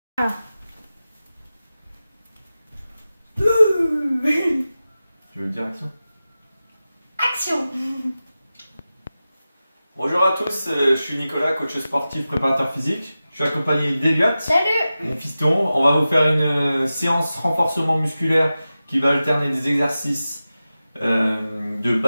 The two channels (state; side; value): inverted; both; correlation -0.94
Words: Ah. Tu veux dire action? Action. Bonjour à tous, je suis Nicolas, coach sportif, préparateur physique. Je suis accompagné d'Eliott, Salut. mon fiston. On va vous faire une séance renforcement musculaire qui va alterner des exercices de